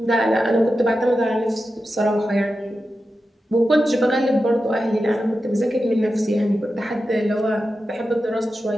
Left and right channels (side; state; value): both; normal; correlation 0.91